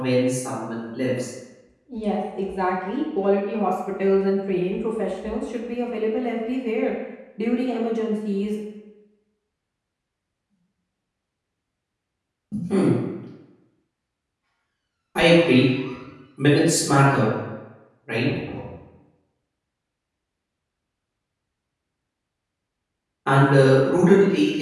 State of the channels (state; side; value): identical; both; correlation 1.00